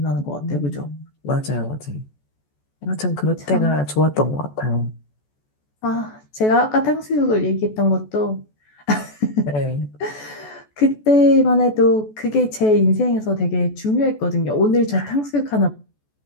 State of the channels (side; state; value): right; late; 14 ms